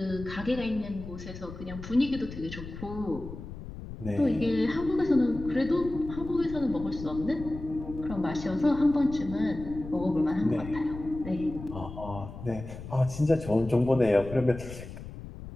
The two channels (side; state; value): left; noise; rumble, 12 dB below the sound